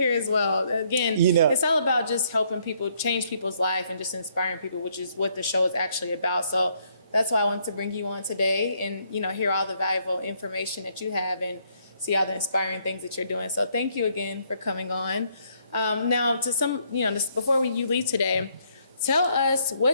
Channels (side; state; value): both; inverted; correlation -0.69